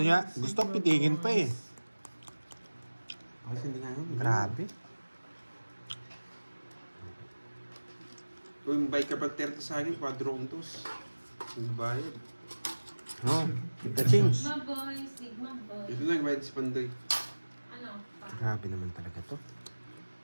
niya, gusto Sigma pitigin pa eh. boys. Kasi hindi nga yun, grabe. Kung may ka pa 30 sa akin, 4 rondos. Ang bayad. No, kita change. Sigma boy, Sigma boy. Ito lang, bayad si Pandoy. Ano? Pa? Grabe naman talaga to.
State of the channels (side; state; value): both; inverted; correlation -1.00